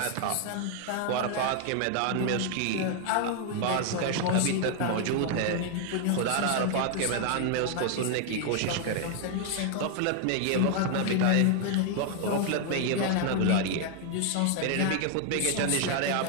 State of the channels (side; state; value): both; different; correlation 0.00